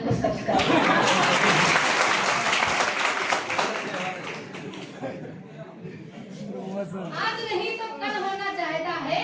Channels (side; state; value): both; identical; correlation 1.00